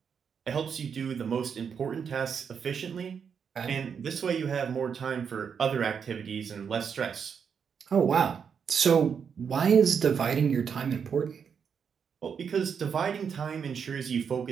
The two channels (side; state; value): left; quieter; 6.9 dB